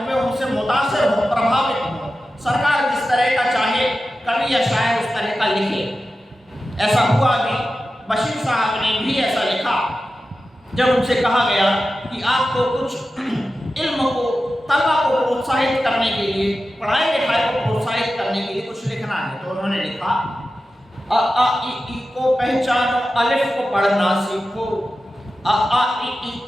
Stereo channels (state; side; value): normal; both; correlation 0.93